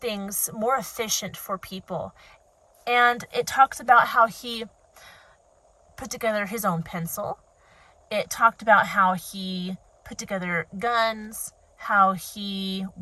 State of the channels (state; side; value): identical; both; correlation 1.00